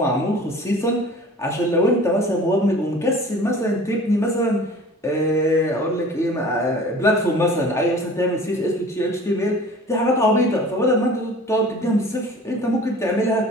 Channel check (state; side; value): normal; both; correlation 0.45